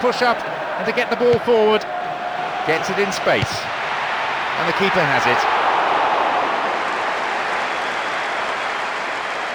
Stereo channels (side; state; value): both; identical; correlation 1.00